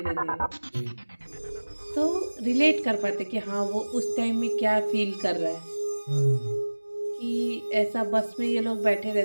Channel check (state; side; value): inverted; both; correlation -1.00